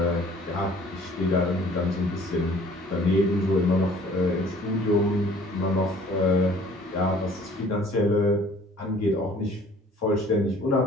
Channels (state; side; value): normal; both; correlation 0.53